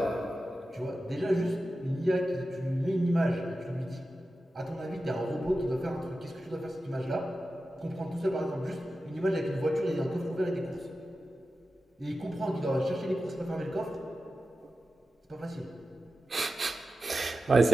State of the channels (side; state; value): both; normal; correlation 0.93